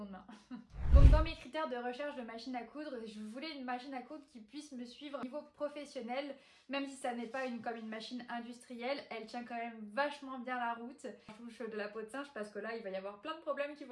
main. Donc dans mes critères de recherche de machine à coudre, je voulais une machine à coudre qui puisse me suivre au niveau professionnel, même si ça n'est pas comme une machine industrielle, elle tient quand même vachement bien la route. Je touche de la peau de singe parce que là il va y avoir plein de problèmes qui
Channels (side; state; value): both; identical; correlation 1.00